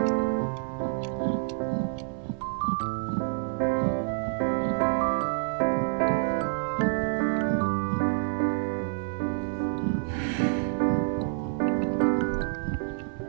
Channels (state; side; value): silent; left; 59 dB below the other